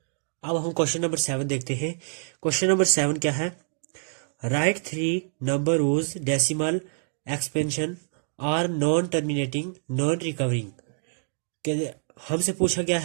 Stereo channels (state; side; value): silent; left; digital silence